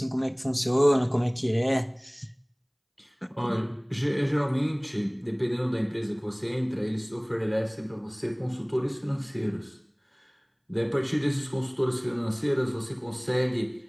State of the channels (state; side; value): identical; both; correlation 1.00